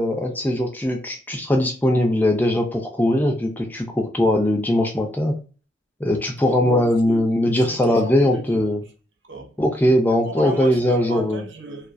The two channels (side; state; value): both; normal; correlation 0.77